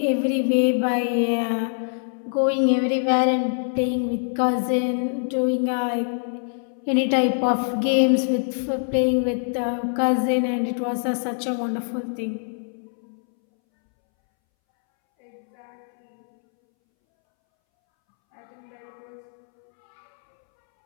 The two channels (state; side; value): silent; right; 63 dB below the other